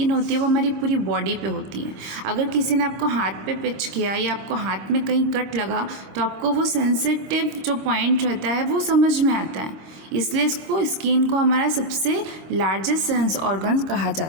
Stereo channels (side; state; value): left; late; 26 ms